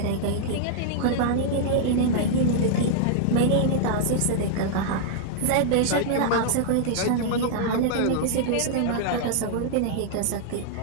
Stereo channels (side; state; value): both; different; correlation -0.01